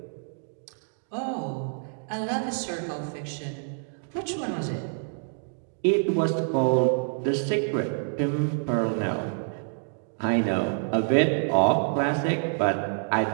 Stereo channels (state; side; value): silent; left; 60 dB below the other